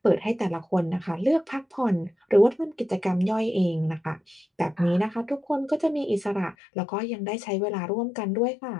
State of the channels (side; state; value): right; drops out; at 6.6 s